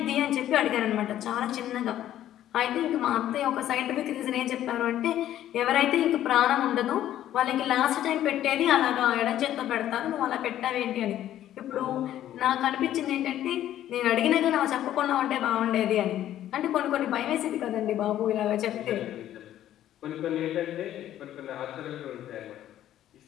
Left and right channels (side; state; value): right; quieter; 12.2 dB